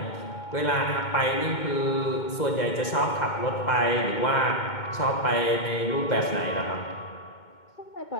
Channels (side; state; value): right; late; 2.2 ms